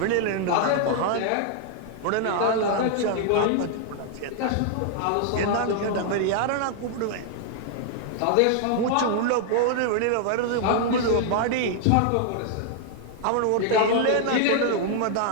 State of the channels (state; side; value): different; both; correlation 0.00